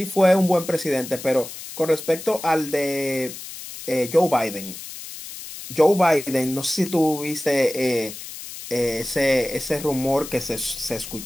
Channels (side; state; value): left; noise; hiss, 12 dB below the sound